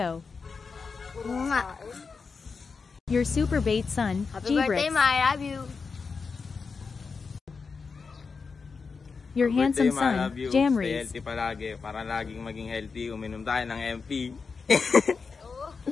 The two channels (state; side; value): quieter; right; 5.0 dB